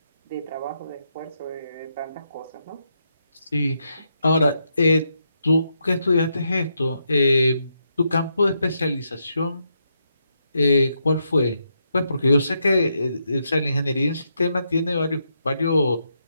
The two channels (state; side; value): inverted; both; correlation -0.80